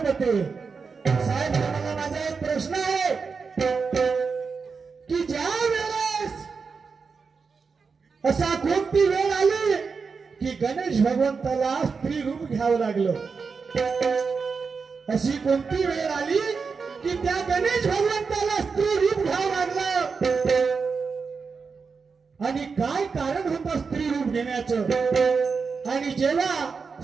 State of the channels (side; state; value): left; quieter; 5.1 dB